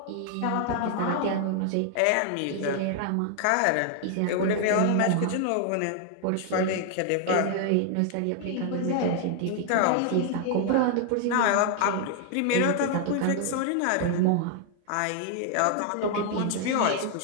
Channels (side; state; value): both; different; correlation 0.00